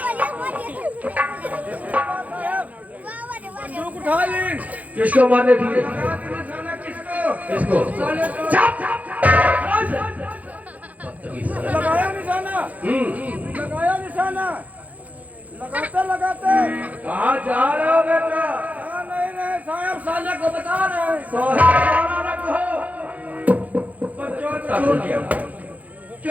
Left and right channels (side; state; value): left; late; 0.075 ms